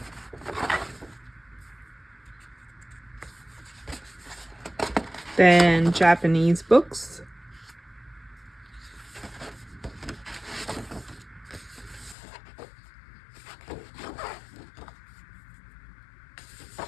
Then Japanese books.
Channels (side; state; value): right; drops out; at 12.2 s